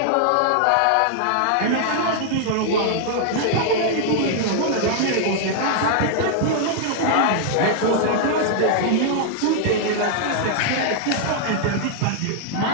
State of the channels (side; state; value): both; different; correlation -0.01